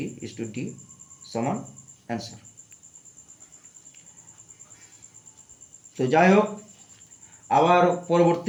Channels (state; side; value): identical; both; correlation 1.00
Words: সমান অ্যান্সার। তো যাই হোক, আবার